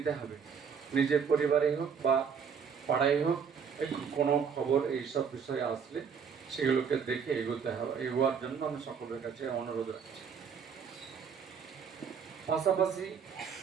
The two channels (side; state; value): left; quieter; 6.7 dB